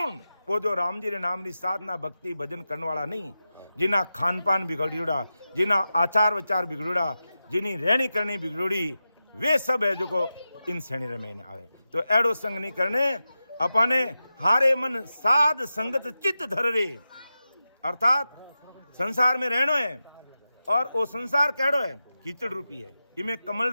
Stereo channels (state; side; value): inverted; both; correlation -0.92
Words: वो जो राम जी रे नाम री साधना भक्ति भजन करने वाला नहीं, जिना खान पान बिगड़ियोड़ा, जिना आचार विचार बिगड़ोड़ा, जिनी रहनी करनी बिगड़ोड़ी, वे सब है जो को इन श्रेणी रे में आवे। तो एड़ो संग नहीं करने अपने हारे मन साध संगत चित्त धर रे। अर्थात संसार में रहनो है और वो संसार केड़ो है कीचड़ रूपी है। इमें